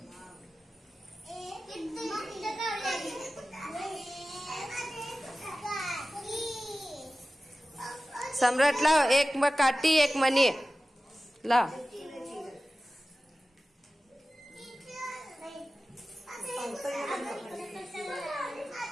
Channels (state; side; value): normal; both; correlation 0.96